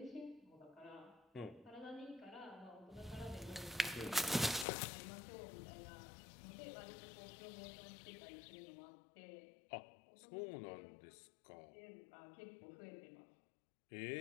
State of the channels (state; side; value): drops out; right; at 4.7 s